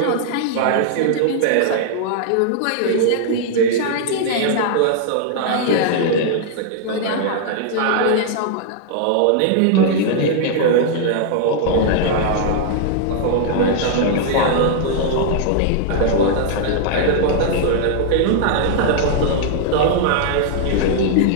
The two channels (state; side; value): different; both; correlation -0.01